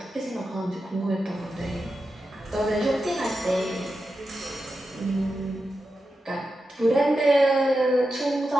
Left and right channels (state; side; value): normal; both; correlation 0.89